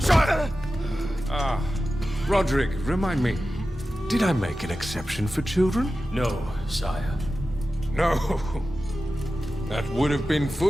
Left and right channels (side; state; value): both; normal; correlation 0.93